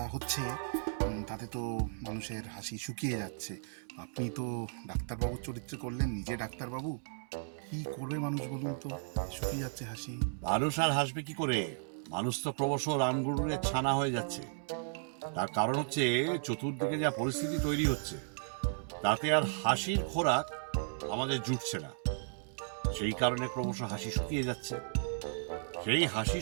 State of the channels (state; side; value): silent; left; digital silence